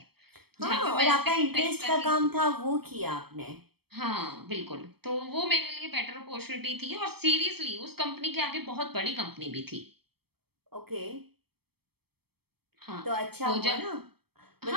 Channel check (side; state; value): left; late; 0.96 ms